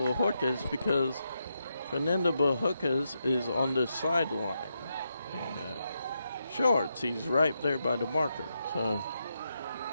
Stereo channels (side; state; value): both; inverted; correlation -0.84